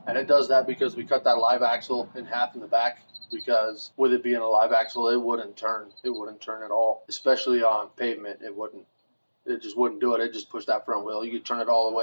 And it does that because we cut that live axle in half in the back, because with it being a live axle, it wouldn't turn. It wouldn't turn at all, especially on pavement. It just wouldn't do it. It just pushed that front wheel. You could turn it all the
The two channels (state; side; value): inverted; both; correlation -1.00